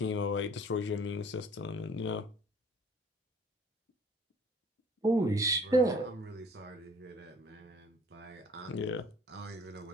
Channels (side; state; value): both; normal; correlation 0.52